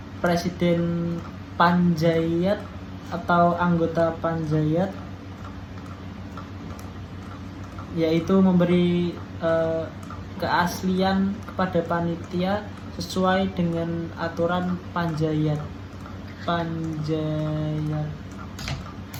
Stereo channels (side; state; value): both; identical; correlation 1.00